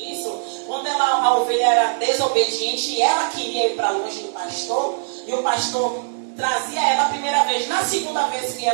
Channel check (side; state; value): left; silent; digital silence